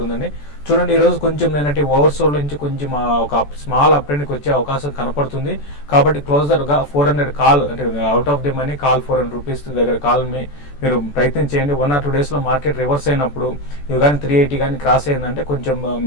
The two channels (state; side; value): late; right; 14 ms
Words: చూడండి ఈరోజు కొంచెం నేనంటే ఓవర్సోల్ నుంచి కొంచెం ఒక స్మాల్ అప్రెండ్కి వచ్చే అవకాశం కనపడుతుంది. కాబట్టి క్లోజర్గా 400 కాల్ అంటే out of the money call 400 rupees దగ్గర కాల్ మీరు ప్రయత్నం చేయండి. 1 or 2 డేస్లో మార్కెట్ రివర్స్ అయినప్పుడు ఇవి కానీ 380 కానీ క్రాస్ అయిందంటే కొంచెం